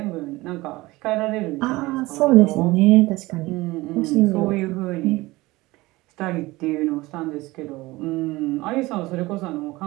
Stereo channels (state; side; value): quieter; left; 20.2 dB